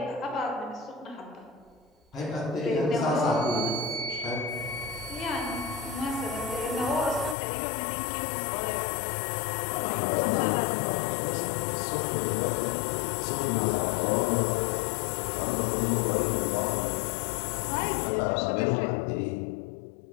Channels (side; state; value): right; drops out; at 7.4 s